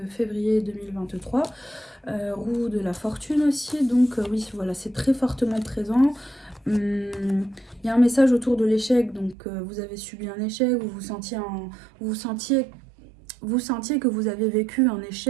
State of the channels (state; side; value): drops out; left; at 9.3 s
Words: février 2023. Roue de la fortune aussi, donc oui, voilà, c'est très fortement présent. Il y a un message autour de l'échec, donc vous avez subi un échec, vous sentiez que vous avez vécu un